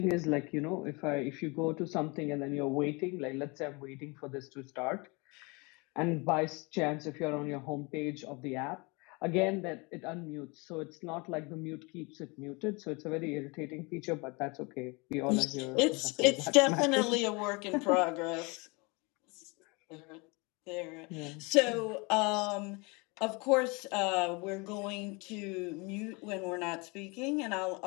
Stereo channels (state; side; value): quieter; right; 28.4 dB